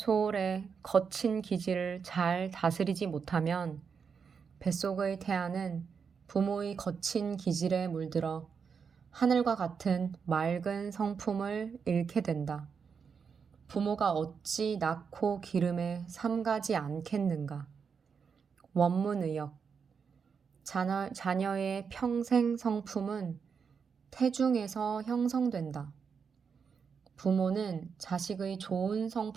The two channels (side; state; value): left; quieter; 6.2 dB